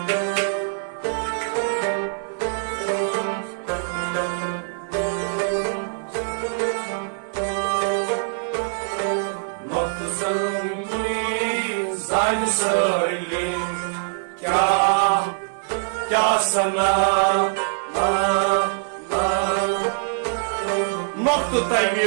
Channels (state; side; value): silent; left; 56 dB below the other